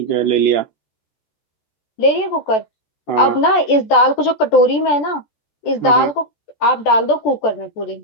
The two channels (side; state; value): right; late; 14 ms